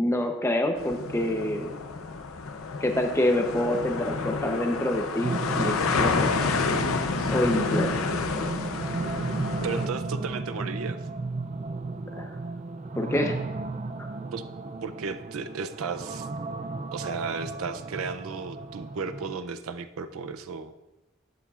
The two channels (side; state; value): both; normal; correlation 0.51